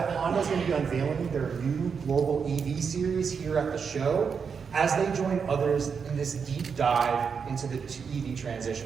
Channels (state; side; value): quieter; left; 6.1 dB